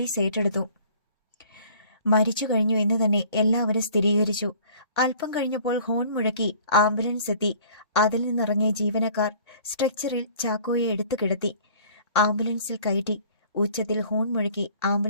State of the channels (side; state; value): both; inverted; correlation -0.51